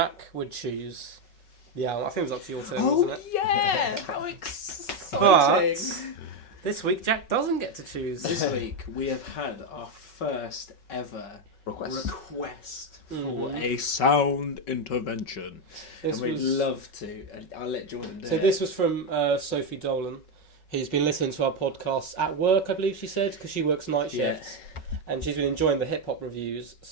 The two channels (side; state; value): right; late; 5.3 ms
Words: would choose the album. I think it was up to your turn, wasn't it? Yeah! How exciting! But This week, Jack doesn't get to choose. This week we have had our first ever request For a sound intervention. and we'd love to. And I'll let Jordan do it. So this was from Sophie Dolan, who's been listening to our podcast at work, I believe she said, because she works night shifts. And she's been enjoying the hip-hop reviews.